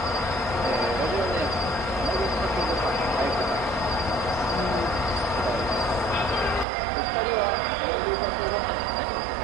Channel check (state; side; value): drops out; left; at 6.7 s